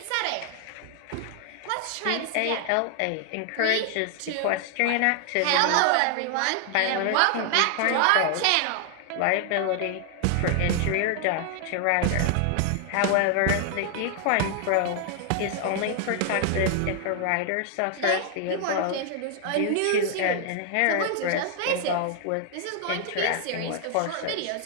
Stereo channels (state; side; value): different; both; correlation 0.00